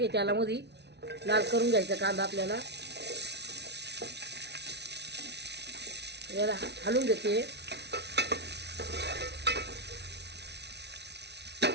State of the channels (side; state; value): left; late; 0.50 ms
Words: त्याला मध्ये. लाल करून घ्यायचा कांदा आपल्याला. याला हलवून घेते.